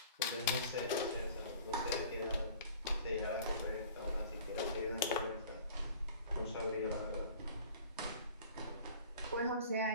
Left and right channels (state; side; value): inverted; both; correlation -0.46